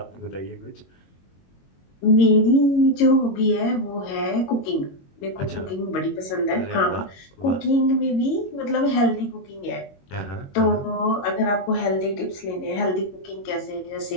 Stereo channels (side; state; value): right; late; 22 ms